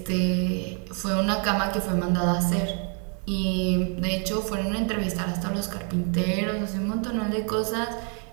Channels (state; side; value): quieter; left; 38.2 dB